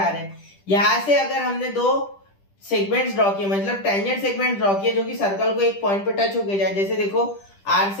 रहे हैं, यहां से अगर हमने दो सेगमेंट्स ड्रॉ किए, मतलब टेंजेंट सेगमेंट ड्रॉ किए जो कि सर्कल को एक पॉइंट पे टच होके जाए, जैसे देखो आर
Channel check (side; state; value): right; late; 10 ms